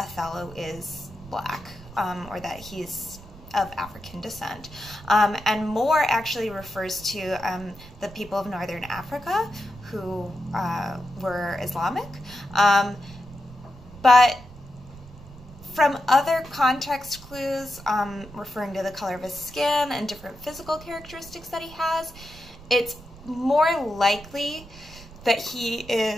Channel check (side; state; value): right; noise; rumble, 18 dB below the sound